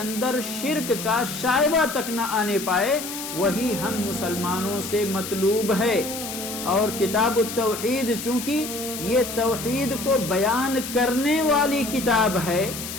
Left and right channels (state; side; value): noise; left; hiss, 8 dB below the sound